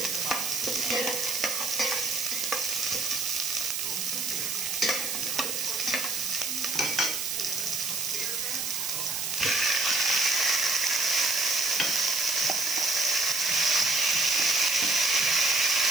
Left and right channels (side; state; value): right; noise; hiss, 2 dB below the sound